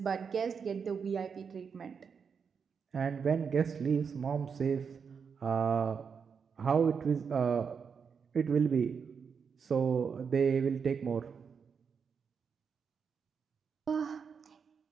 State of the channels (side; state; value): left; quieter; 6.2 dB